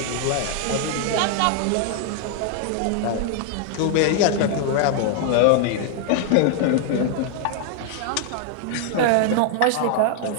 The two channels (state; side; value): different; both; correlation 0.00